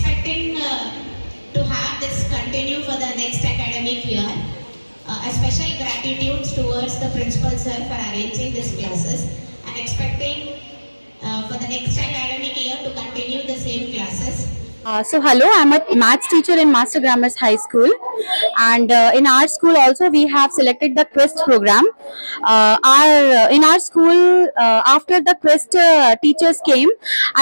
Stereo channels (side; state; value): both; inverted; correlation -1.00